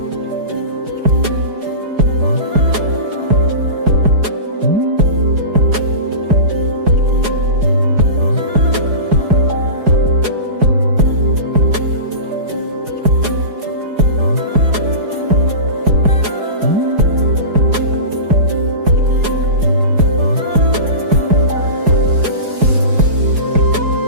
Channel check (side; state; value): left; late; 4.8 ms